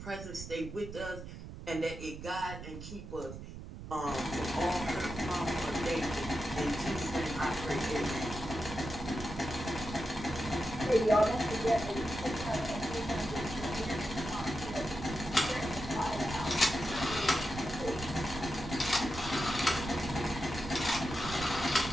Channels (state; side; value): noise; right; rumble, 10 dB below the sound